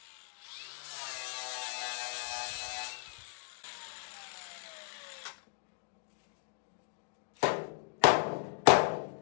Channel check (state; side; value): silent; right; digital silence